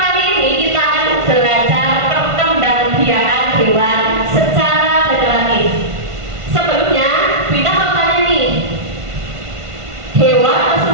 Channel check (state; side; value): late; left; 1.5 ms